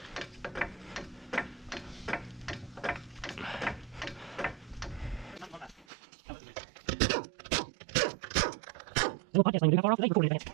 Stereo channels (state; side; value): drops out; left; at 5.9 s